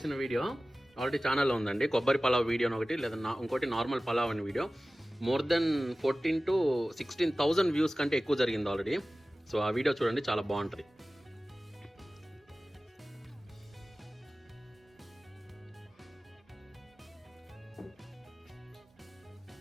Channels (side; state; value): both; normal; correlation 0.97